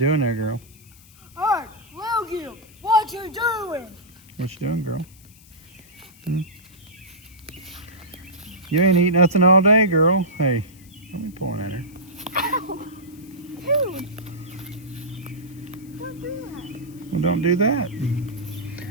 there, girl? Hey, Logan, what you doing? What you doing, girl? You ain't eat nothing all day, girl. Hey, let me pull at her. Ow! Dude! Don't do that. Well, don't do that.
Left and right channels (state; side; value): noise; left; hiss, 25 dB below the sound